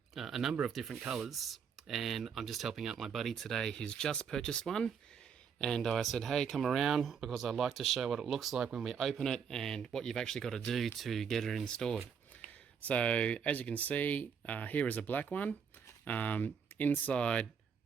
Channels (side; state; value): left; quieter; 6.9 dB